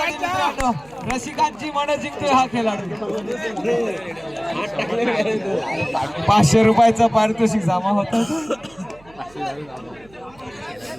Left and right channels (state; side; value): noise; right; hum, 26 dB below the sound